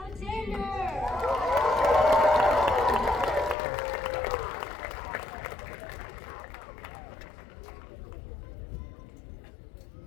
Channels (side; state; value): right; drops out; at 3.6 s